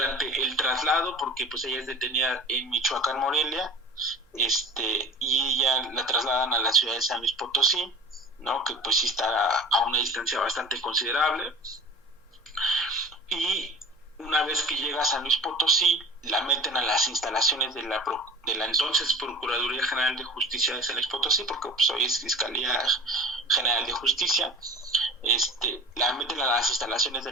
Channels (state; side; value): normal; both; correlation 0.37